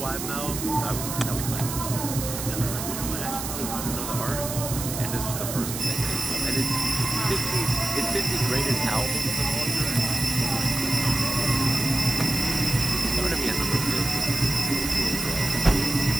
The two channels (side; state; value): right; noise; hiss, 6 dB below the sound